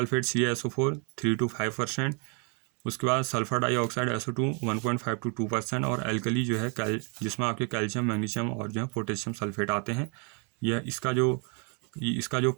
CaSO4 3 to 5%। उसके बाद सल्फर डाइऑक्साइड SO2 1.5 to 2%, और एल्कली जो है जिसमें आपके कैल्शियम, मैग्नीशियम और जो है पोटेशियम सल्फेट आते हैं, यह इसका जो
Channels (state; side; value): quieter; left; 36.8 dB